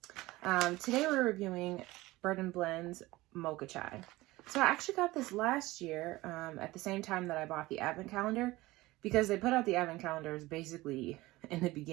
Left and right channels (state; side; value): quieter; left; 19.3 dB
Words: Today we're reviewing Bird & Blend's Mocha Chai. So I actually got this last year at the same time that I bought the advent calendar, because they put out the advent calendars basically in the